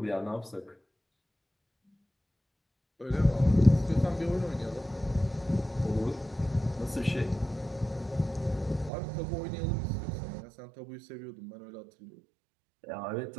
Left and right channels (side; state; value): left; drops out; at 8.9 s